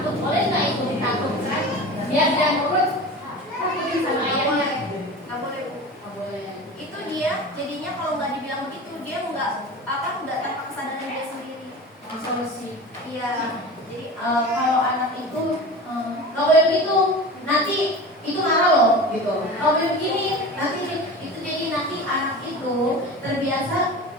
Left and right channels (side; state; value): both; normal; correlation 0.33